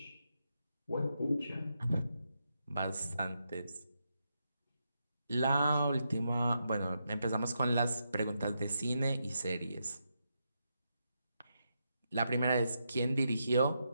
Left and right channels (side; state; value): both; inverted; correlation -0.83